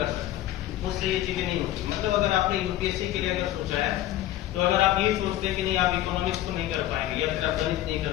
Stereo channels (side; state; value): right; quieter; 14.0 dB